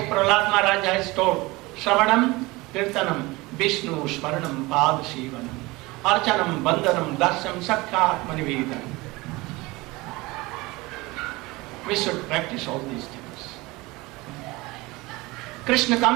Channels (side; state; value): left; quieter; 22.2 dB